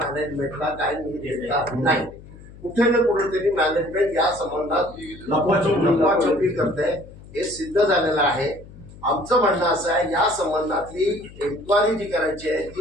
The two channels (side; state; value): left; noise; hum, 19 dB below the sound